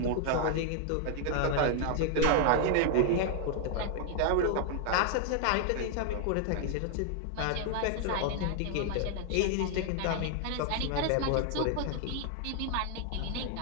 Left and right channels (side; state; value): both; different; correlation 0.00